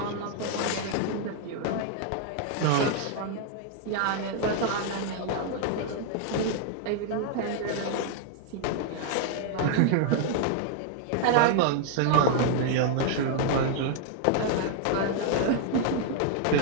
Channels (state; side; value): different; both; correlation 0.00